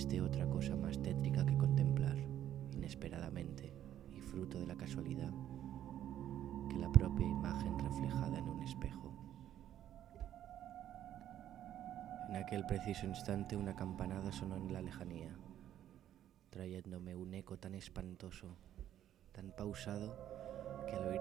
otra cosa más tétrica que contemplar, inesperadamente y fruto de la casualidad, que la propia imagen reflejada en un espejo. En aquel preciso instante una campanada sonó en la lejanía, trayéndome un eco tan espantoso, tan pausado, que al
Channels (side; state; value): left; quieter; 11.3 dB